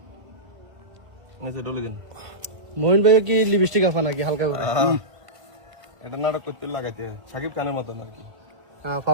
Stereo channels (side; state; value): left; late; 1.5 ms